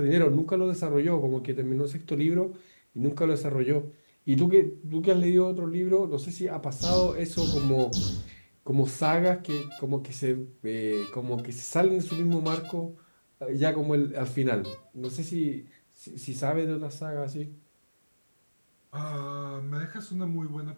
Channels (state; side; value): inverted; both; correlation -1.00